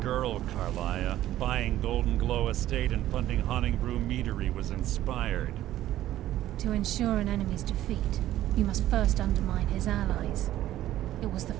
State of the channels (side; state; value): left; quieter; 13.7 dB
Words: Carlia. Buying Golden Glow Estate and funding Honningbrew Meadery was inspired. To ensure an enemy's defeat, you must first undermine his allies. It was the